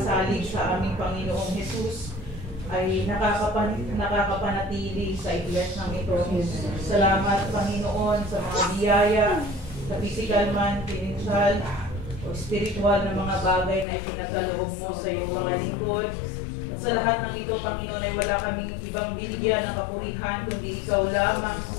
sa aming Panginoong Jesus ay nakakapanatili sa iglesia ng ito. Salamat, Panginoon, sa mga biyaya, sa physical man, financial, o spiritual na mga bagay na ipinagkaloob mo sa iyong mga lingkod. At sa lahat ng ito, Panginoon, ay wala kaming ibang binigyan ng kapurihan kundi Ikaw lamang,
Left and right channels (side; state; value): right; drops out; at 13.9 s